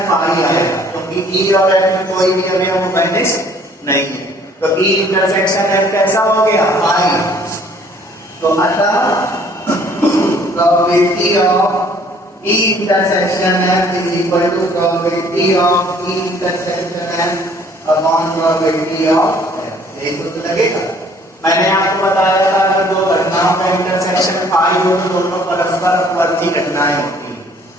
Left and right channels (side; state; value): both; normal; correlation 0.58